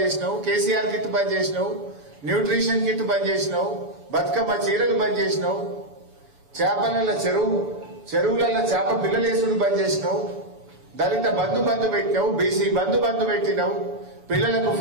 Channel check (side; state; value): left; late; 7.0 ms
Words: చేసినావు, కేసీఆర్ కిట్ బంద్ చేసినావు, న్యూట్రిషన్ కిట్ బంద్ చేసినావు, బతుకమ్మ చీరలు బంద్ చేసినావు, చేపల చెరువులలో చేప పిల్లలేసుడు బంద్ చేసినావు, దళిత బంధు పెట్టినావు, బీసీ బంధు పెట్టినావు, పిల్లలకు